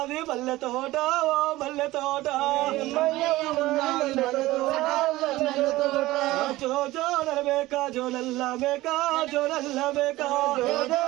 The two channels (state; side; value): quieter; left; 17.8 dB